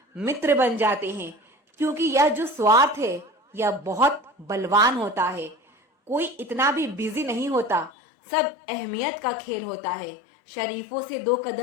मित्र बन जाते हैं, क्योंकि यह जो स्वार्थ है यह बहुत बलवान होता है। कोई इतना भी बिजी नहीं होता, सब अहमियत का खेल होता है। शरीफों से 2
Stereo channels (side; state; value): right; drops out; at 7.9 s